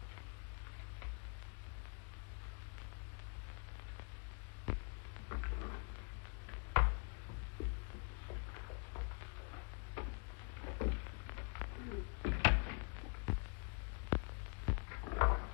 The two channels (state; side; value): quieter; right; 35.9 dB